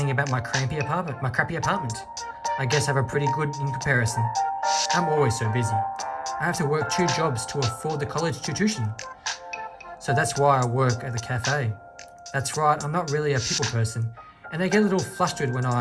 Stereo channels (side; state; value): both; identical; correlation 1.00